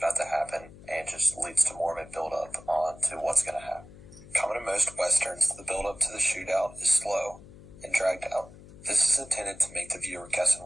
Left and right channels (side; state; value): left; noise; hum, 19 dB below the sound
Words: to happen and just leads to more of a build-up on to what's going to happen. Common to most Westerns, the build-up to the shootout is slow and dragged out. This is intended to make the viewer guess on